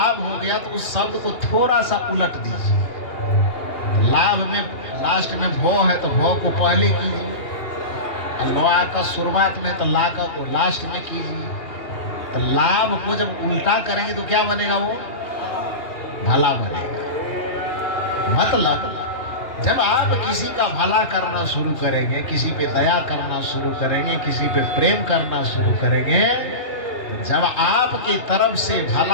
हो गया, तो उस शब्द को थोड़ा सा उलट दीजिए। लाभ में लास्ट में भौ है तो भौ को पहले कीजिए, और लोआ का शुरुआत में तो ला का को लास्ट में कीजिए। तो लाभ को जब उल्टा करेंगे तो क्या बनेगा, वो भला बनेगा। मतलब जब आप किसी का भला करना शुरू करेंगे, किसी पे दया करना शुरू करेंगे, किसी पे प्रेम करना शुरू करेंगे, जब आपकी तरफ से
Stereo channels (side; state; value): right; late; 2.8 ms